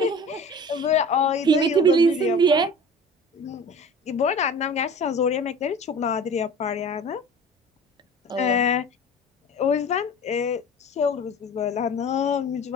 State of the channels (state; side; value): normal; both; correlation 0.39